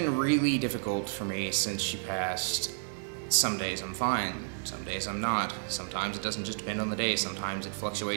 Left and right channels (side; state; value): left; silent; 57 dB below the other